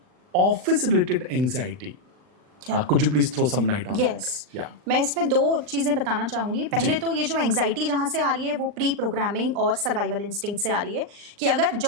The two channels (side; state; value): left; late; 39 ms